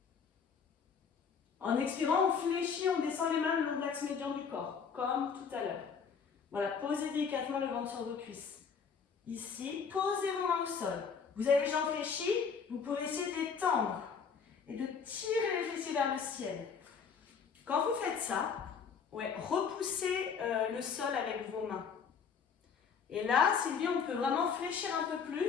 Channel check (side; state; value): right; quieter; 6.2 dB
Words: En expirant, on fléchit, on descend les mains le long de l'axe médian du corps, comme tout à l'heure. Voilà, posez délicatement le ventre sur vos cuisses. Ici, posez vos mains au sol. Vous avez les jambes fléchies, vous pouvez essayer de les tendre et de tirer les fessiers vers le ciel. Quand vous faites ça, repoussez le sol avec vos mains. Et là, Sylvie, on peut vraiment fléchir un peu